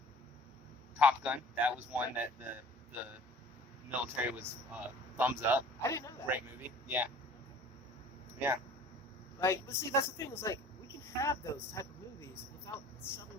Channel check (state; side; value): normal; both; correlation 0.47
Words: Top Gun, that was one that the military was thumbs up. I didn't know that. Great movie. Yeah. Yeah. Like, but see, that's the thing. Is like we can have those type of movies without shoving